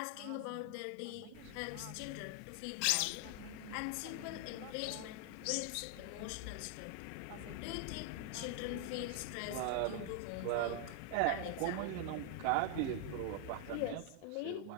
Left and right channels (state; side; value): different; both; correlation 0.00